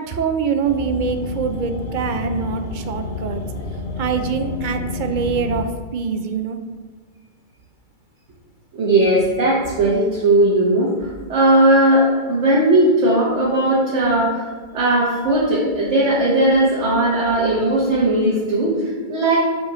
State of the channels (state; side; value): late; right; 2.3 ms